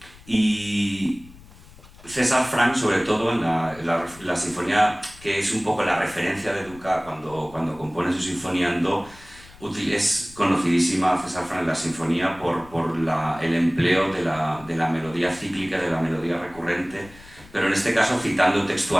Y César Franck, sobre todo en la sinfonía, que es un poco la referencia de Dukas cuando compone su sinfonía en do, es conocidísima César Franck en la sinfonía por el empleo de la melodía cíclica, de la melodía recurrente, pero en este caso citando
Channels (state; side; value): noise; left; rumble, 22 dB below the sound